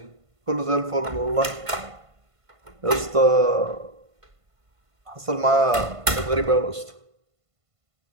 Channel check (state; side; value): late; left; 1.5 ms